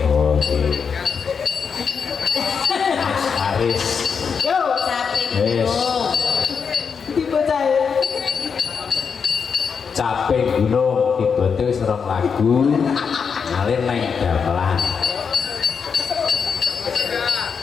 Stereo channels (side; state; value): right; quieter; 6.2 dB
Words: Oke. Mas Aris. Yo, Caping Yes. Gunung. Caping Gunung dibantu wis rong lagu ngalir neng gamelan.